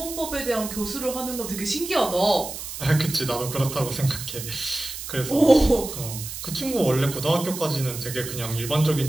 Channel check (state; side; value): noise; right; hiss, 9 dB below the sound